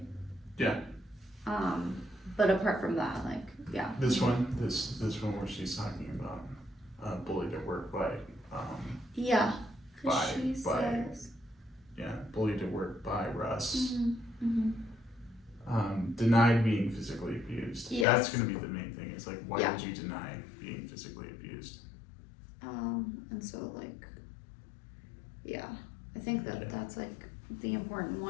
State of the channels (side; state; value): right; drops out; at 18.1 s